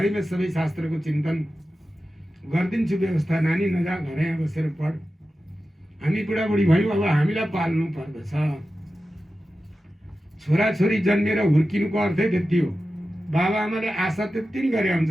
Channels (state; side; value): normal; both; correlation 0.93